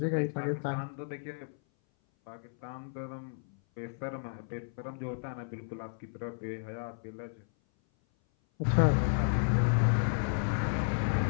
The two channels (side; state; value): right; silent; 56 dB below the other